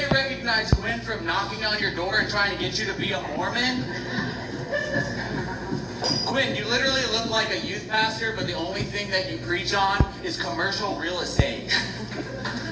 recognize Quinn from knocking on your door and trying to get you to be a Mormon. Quinn, you literally look like a youth pastor, but the only thing that you preach on is commercial real estate.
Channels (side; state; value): both; identical; correlation 1.00